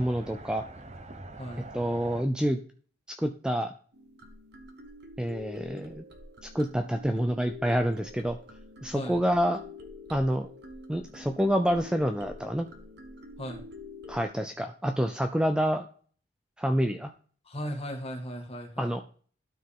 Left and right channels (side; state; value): both; normal; correlation 0.90